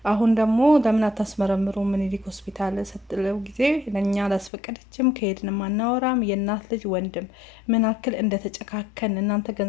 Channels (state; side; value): drops out; right; at 4.5 s